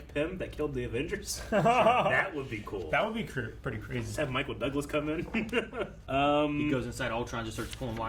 Pym that killed the Avengers. That would be cool. That would be pretty crazy. Just have Michael Douglas come in. He goes inside Ultron, just starts pulling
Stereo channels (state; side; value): identical; both; correlation 1.00